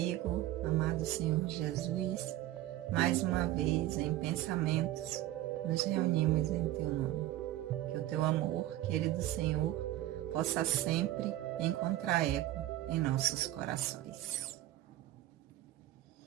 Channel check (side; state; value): left; quieter; 14.8 dB